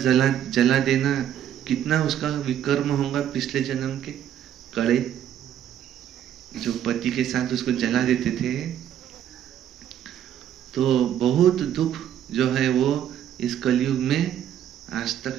जला देना। कितना उसका विकर्म होगा पिछले जन्म के कड़े, जो पति के साथ उसको जला देते थे। तो बहुत दुख जो है वो इस कलयुग में आज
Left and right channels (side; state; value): left; quieter; 10.4 dB